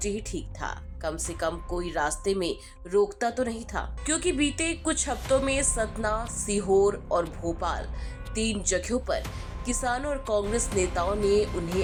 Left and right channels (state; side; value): identical; both; correlation 1.00